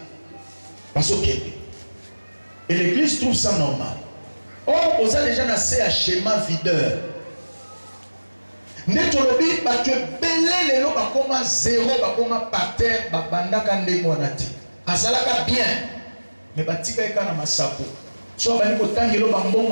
Parce que et l'église trouve ça normal. Or, on a déjà assez à schéma videur. Netolobi, tu es belé les lots, comme zéro, comme par terre, banda kande monati. Azalaka bien, mais batika eka na masapo. So bani kotangelo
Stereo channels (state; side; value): inverted; both; correlation -1.00